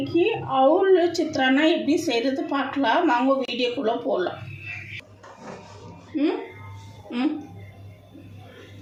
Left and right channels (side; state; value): both; identical; correlation 1.00